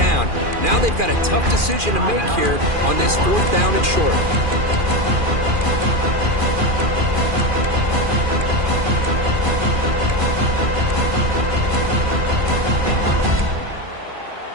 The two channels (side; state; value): left; late; 2.4 ms